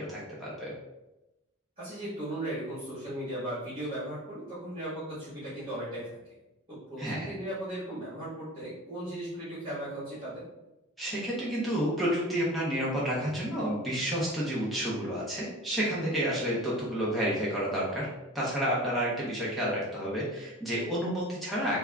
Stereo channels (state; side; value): normal; both; correlation 0.37